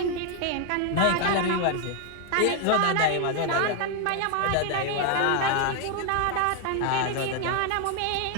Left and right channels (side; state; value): both; different; correlation 0.00